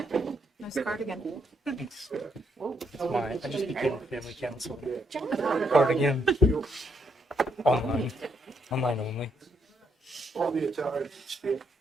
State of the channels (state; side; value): normal; both; correlation 0.75